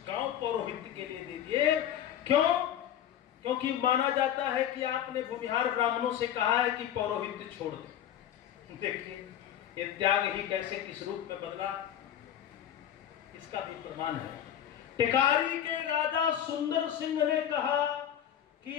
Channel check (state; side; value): quieter; right; 10.5 dB